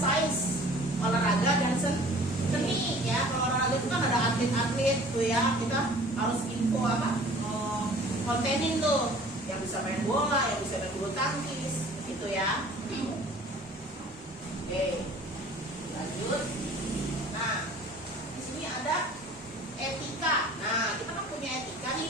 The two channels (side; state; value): both; normal; correlation 0.48